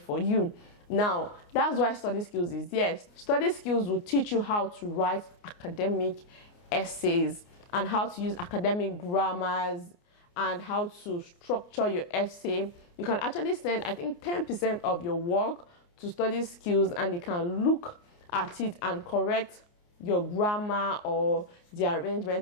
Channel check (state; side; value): late; right; 29 ms